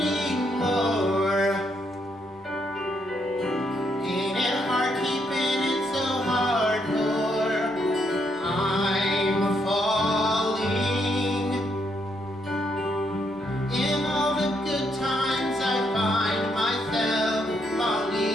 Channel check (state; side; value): normal; both; correlation 0.76